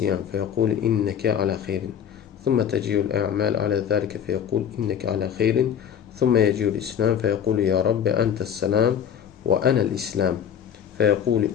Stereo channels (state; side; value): quieter; right; 8.6 dB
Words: fəyəqul innəki alə xeyrin ثم تجيء الأعمال على ذلك فيقول إنك على خير ثم يجيء الإسلام فيقول يا رب أنت السلام وأنا الإسلام فيقول